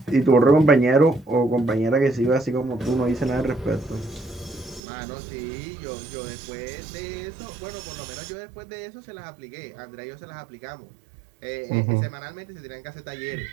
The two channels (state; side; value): drops out; left; at 4.8 s